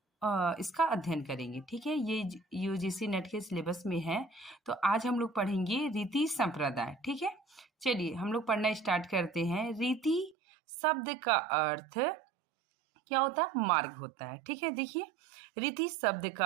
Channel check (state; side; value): drops out; left; at 10.4 s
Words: इसका अध्ययन करेंगे। ठीक है, ये यूजीसी नेट के सिलेबस में है, तो आज हम लोग पढ़ेंगे रीति संप्रदाय। ठीक है, चलिए हम लोग पढ़ना स्टार्ट करते हैं। रीति शब्द का अर्थ क्या होता है? मार्ग होता है। ठीक है, देखिए रीति शब्द